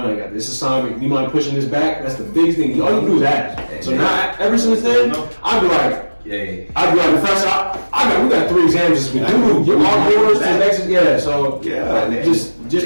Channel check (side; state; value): both; inverted; correlation -1.00